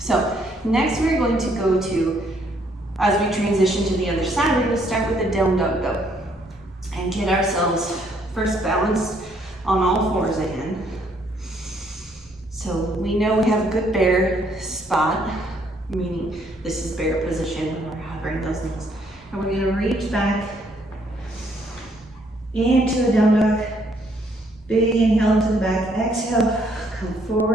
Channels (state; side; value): normal; both; correlation 0.68